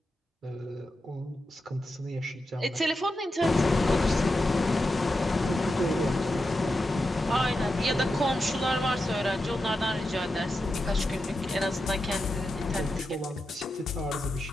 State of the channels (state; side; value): normal; both; correlation 0.89